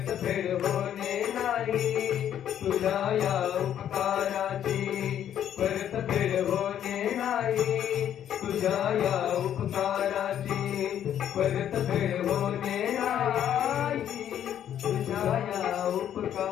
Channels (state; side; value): quieter; right; 10.2 dB